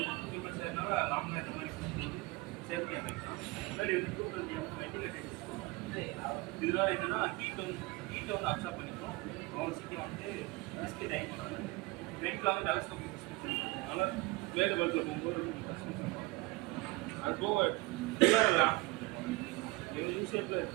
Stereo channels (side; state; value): left; quieter; 23.4 dB